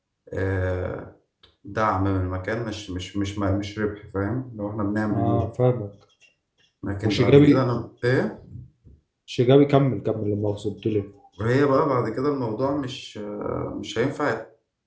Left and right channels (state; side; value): identical; both; correlation 1.00